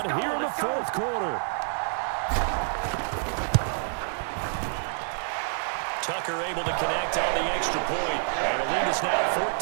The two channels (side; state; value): left; silent; 60 dB below the other